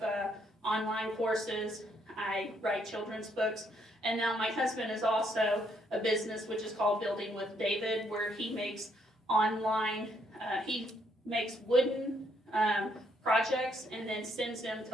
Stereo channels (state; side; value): normal; both; correlation 0.71